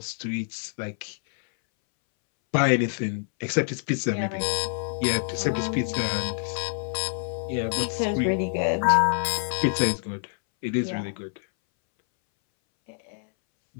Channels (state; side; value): silent; right; 61 dB below the other